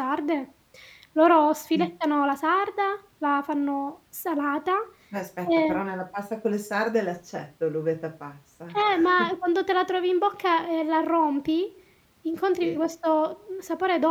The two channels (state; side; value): identical; both; correlation 1.00